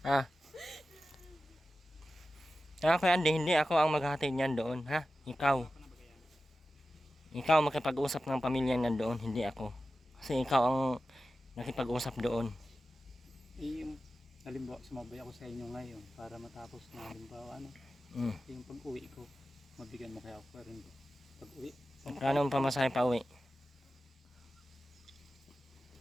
Ha? Kuya Andy, hindi ako ang maghahatid niyan doon, ha? Ikaw. Ikaw ang makipag-usap ng pamilya niyan doon, hindi ako. Kasi ikaw ang nakipag-usap doon. Yung halimbawa, sumabay ako sa inyo ngayon para matapos na halimbawa ano, Mm. yung pag-uwi ko, mabigyan mo kaya ako rin pag-uwi. Kano ang pamasahe pa uwi?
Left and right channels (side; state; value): both; normal; correlation 0.94